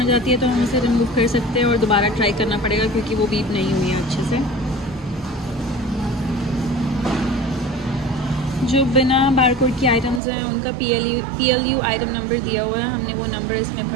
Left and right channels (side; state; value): left; drops out; at 10.2 s